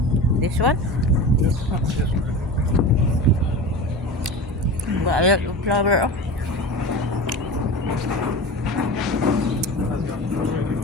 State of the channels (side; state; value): both; normal; correlation 0.30